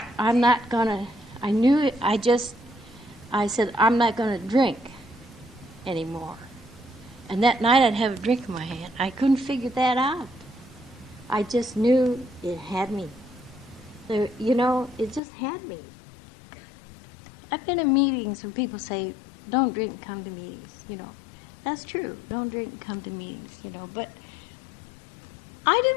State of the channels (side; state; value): right; drops out; at 15.2 s